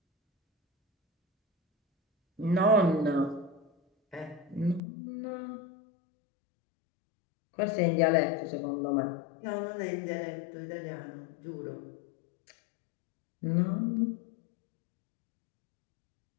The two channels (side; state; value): right; drops out; at 4.8 s